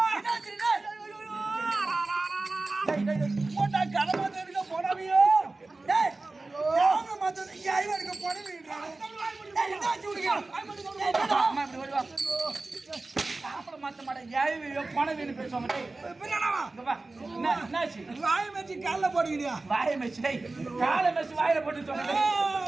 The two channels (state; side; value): quieter; left; 3.3 dB